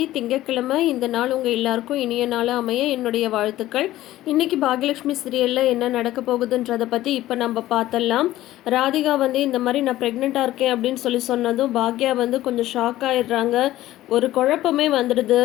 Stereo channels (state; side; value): quieter; right; 15.1 dB